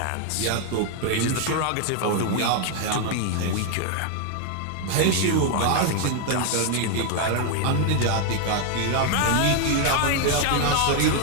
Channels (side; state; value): both; different; correlation 0.00